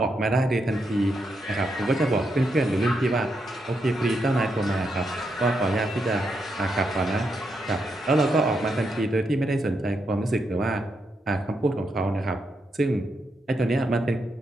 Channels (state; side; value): normal; both; correlation 0.82